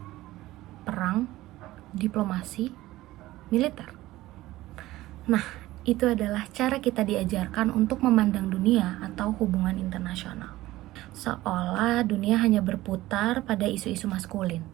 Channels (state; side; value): quieter; left; 16.8 dB